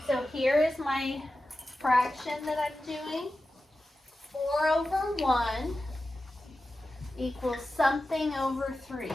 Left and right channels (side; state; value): both; normal; correlation 0.93